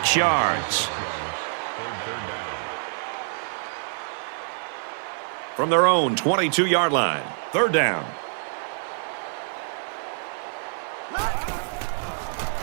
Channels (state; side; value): silent; left; 61 dB below the other